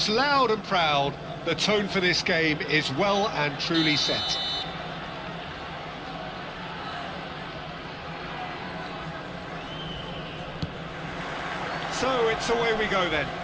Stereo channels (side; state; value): both; identical; correlation 1.00